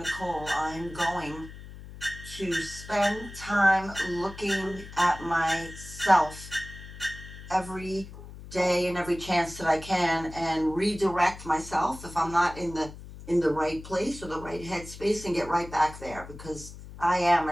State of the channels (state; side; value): noise; left; hum, 14 dB below the sound